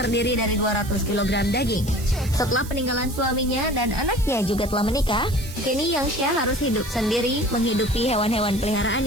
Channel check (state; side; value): noise; right; hiss, 15 dB below the sound